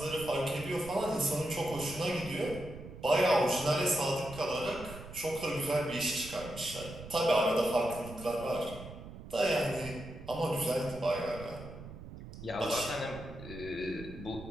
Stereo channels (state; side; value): noise; right; rumble, 13 dB below the sound